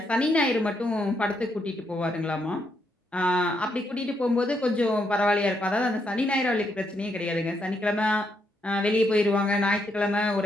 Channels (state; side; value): normal; both; correlation 0.78